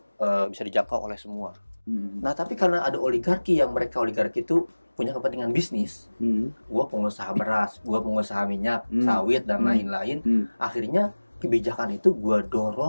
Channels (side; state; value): both; inverted; correlation -1.00